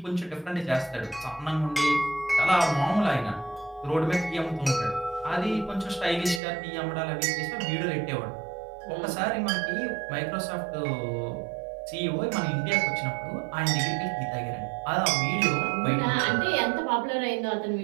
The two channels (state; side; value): drops out; left; at 6.4 s